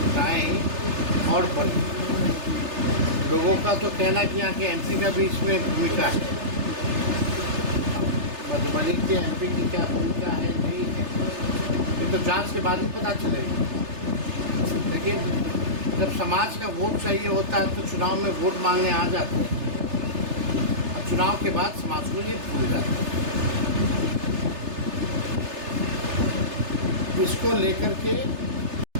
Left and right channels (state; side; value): late; left; 3.3 ms